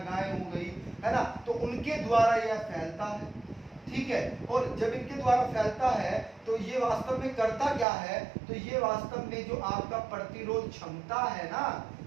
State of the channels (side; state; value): left; drops out; at 7.9 s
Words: हो गई, है ना, तो उनके द्वारा यह फैलता है, ठीक है। और जब इनके द्वारा फैलता है तो ये वास्तव में करता क्या है? तो ये वास्तव में जो आपका प्रतिरोध क्षमता है ना,